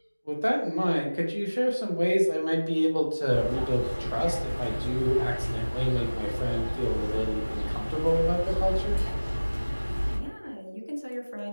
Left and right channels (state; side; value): inverted; both; correlation -1.00